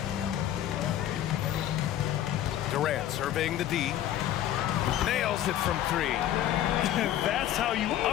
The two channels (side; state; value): right; quieter; 12.0 dB